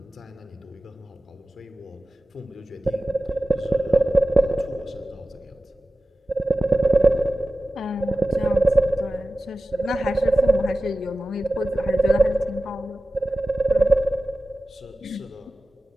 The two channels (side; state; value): both; normal; correlation 0.96